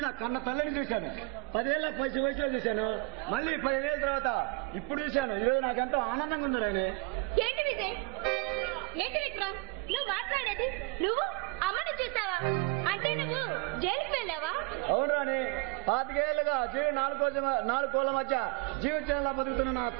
నా కన్న తల్లిని చూశాను 10 ఏళ్ళ వయసులో చూశాను మళ్ళీ 15 ఏళ్ళ తర్వాత ఇప్పుడు చూశాను ఈరోజు నాకెంతో ఆనందంగా ఉంది రాణి ఏంటి విజయ్ ఏంటి విక్రమ్ నువ్వు మాట్లాడేది నువ్వు అమ్మని చూసావా అంటే నువ్వు జైలుకి వెళ్ళావా అవును రాణి 25 ఏళ్ళుగా జీవి 4 కోళ్ళ మధ్య జీవితంలో బతుకుతున్న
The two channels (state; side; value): quieter; left; 30.0 dB